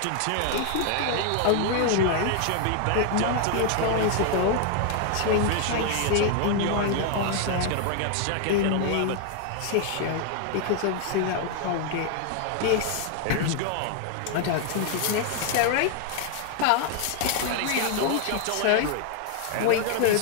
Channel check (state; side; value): different; both; correlation 0.00